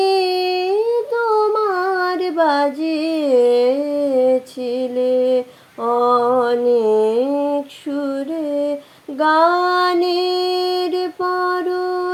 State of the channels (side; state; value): both; identical; correlation 1.00